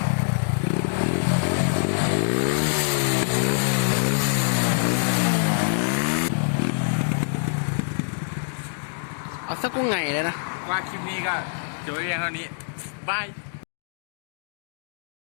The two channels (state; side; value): silent; right; digital silence